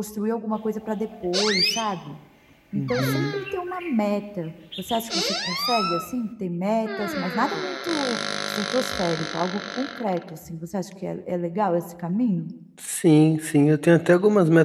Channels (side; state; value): both; identical; correlation 1.00